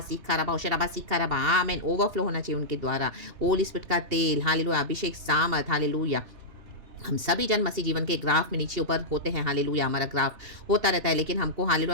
रबा ओशराबा सीखा रबा आमीन ओवरफ्लो होना चाहिए उनके द्वारा। होली स्पिरिट का तेल हालेलुया अभिषेक सामर्थ हालेलुया। हम सभी जन मसीह जीवन के ग्राफ में नीचे ऊपर होते हैं। हालेलुया हमारा ग्राफ होता रहता है, लेकिन हमको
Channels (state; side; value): late; left; 2.7 ms